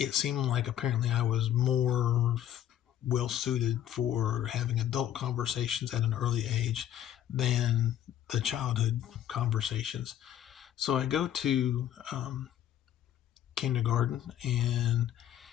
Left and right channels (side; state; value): right; quieter; 11.2 dB